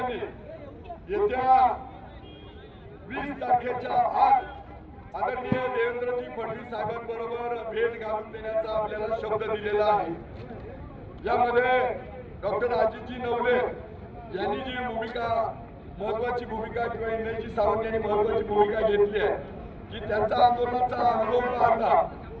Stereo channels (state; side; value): identical; both; correlation 1.00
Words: येत्या 20 तारखेच्या आत आदरणीय देवेंद्रजी फडणवीस साहेबांबरोबर भेट घालून देण्याचा आपल्याला शब्द दिलेला आहे. यामध्ये डॉक्टर अजितजी नवले यांनी जी भूमिका महत्वाची भूमिका किंवा इंद्रजी सावंत यांनी महत्वाची भूमिका घेतली आहे की त्यांचा आंदोलनाचा अनुभव पाहता